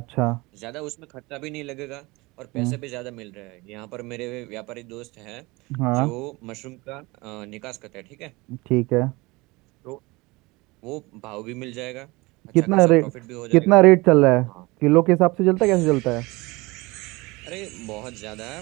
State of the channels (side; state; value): left; quieter; 23.4 dB